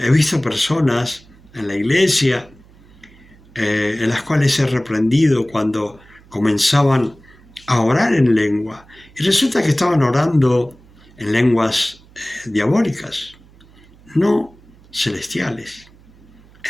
visto personas en la iglesia en las cuales he reprendido cuando comenzaban a orar en lengua. Y resulta que estaban orando en lenguas diabólicas, no celestiales.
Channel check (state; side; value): noise; right; hum, 26 dB below the sound